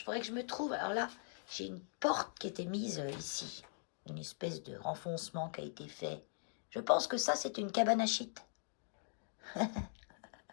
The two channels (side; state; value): right; silent; digital silence